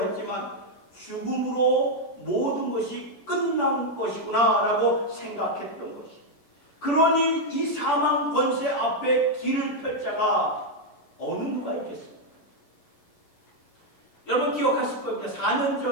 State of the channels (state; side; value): late; right; 10 ms